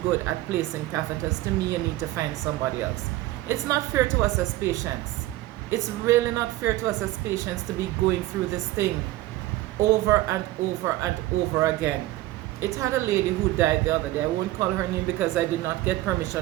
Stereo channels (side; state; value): left; quieter; 16.7 dB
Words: good at placing catheters, to me, you need to find somebody else. It's not fair to us as patients. It's really not fair to us as patients to be going through this thing over and over and over again. It had a lady who died the other day. I won't call her name because I did not get